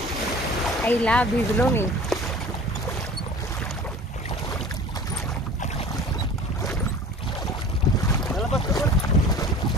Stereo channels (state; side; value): normal; both; correlation 0.42